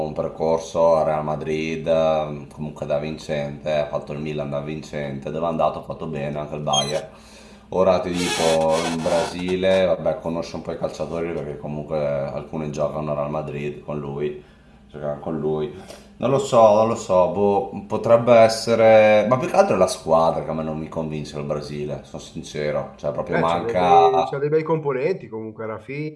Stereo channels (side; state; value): both; identical; correlation 1.00